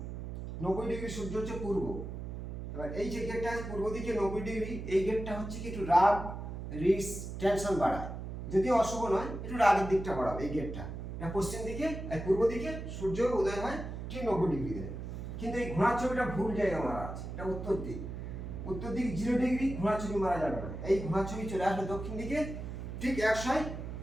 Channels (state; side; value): noise; right; hum, 7 dB below the sound